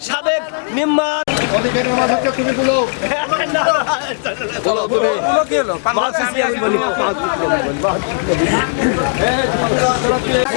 সাবেক নিম্মা অধিকারের মাঝে হচ্ছে তুমি বলো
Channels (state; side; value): silent; right; digital silence